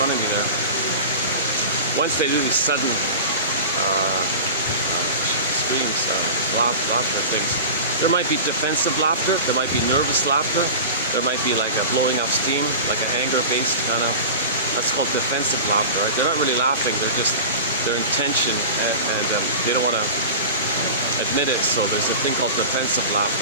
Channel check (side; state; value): both; inverted; correlation -0.32